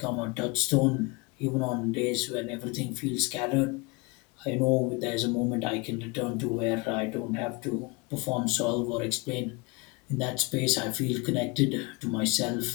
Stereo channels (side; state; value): right; quieter; 26.4 dB